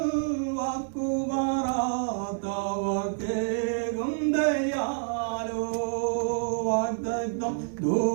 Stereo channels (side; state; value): left; silent; digital silence